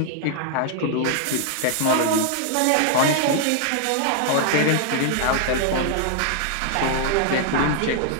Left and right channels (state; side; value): different; both; correlation -0.01